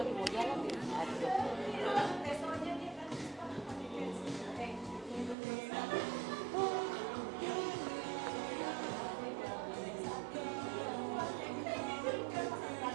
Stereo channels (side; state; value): left; drops out; at 5.4 s